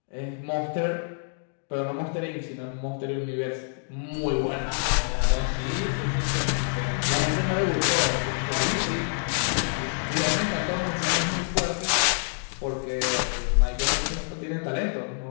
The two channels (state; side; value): silent; right; digital silence